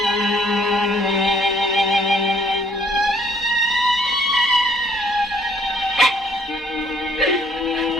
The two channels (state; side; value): normal; both; correlation 0.63